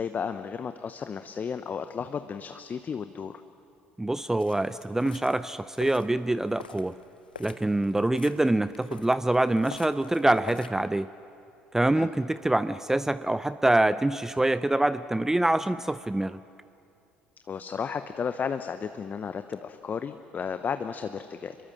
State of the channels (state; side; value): normal; both; correlation 0.94